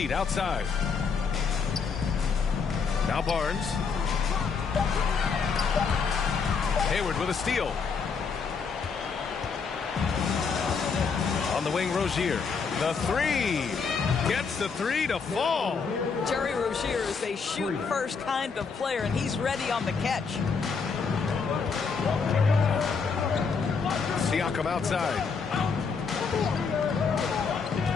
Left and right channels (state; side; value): quieter; right; 5.4 dB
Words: outside. Now Barnes. Hayward with a steal. On the wing, Rozier. The 3. Gets the 3 to fall. Terry Rozier is a shoot-first kind of player, and he's ready on the catch. Siakam outside.